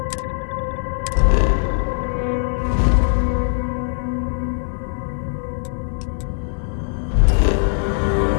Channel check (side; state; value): right; silent; digital silence